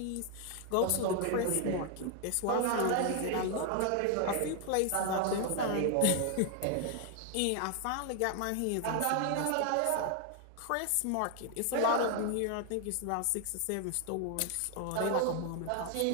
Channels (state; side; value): different; both; correlation 0.00